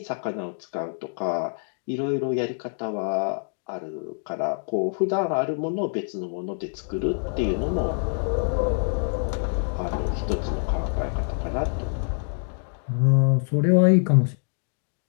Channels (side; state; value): right; silent; digital silence